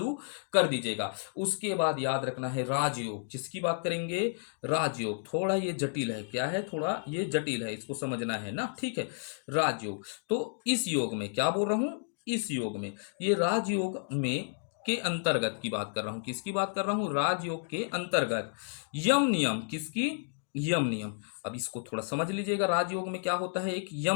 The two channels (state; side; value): silent; right; digital silence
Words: कर दीजिएगा। उसके बाद याद रखना है राजयोग। किसकी बात करेंगे? राजयोग। थोड़ा ये जटिल है। क्या है? थोड़ा ये जटिल है, इसको समझना है ना। ठीक है, राजयोग। तो इस योग में क्या बोल रहा हूं? इस योग में, ये राजयोग में के अंतर्गत की बात कर रहा हूं। किसकी बात कर रहा हूं? राजयोग के अंतर्गत यम नियम। किसकी? यम नियम। अब इसको थोड़ा समझ लीजिएगा। राजयोग में क्या होता है? एक